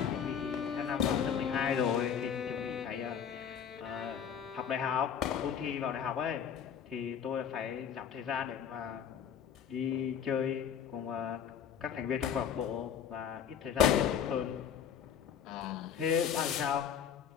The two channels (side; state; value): right; quieter; 8.2 dB